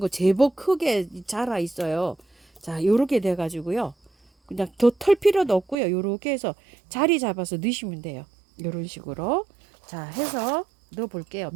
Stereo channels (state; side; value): drops out; left; at 5.8 s